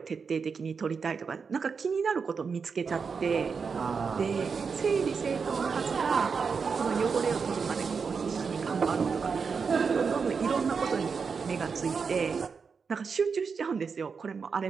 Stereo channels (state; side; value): quieter; left; 5.5 dB